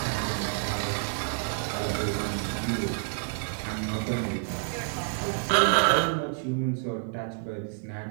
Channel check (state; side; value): silent; left; 59 dB below the other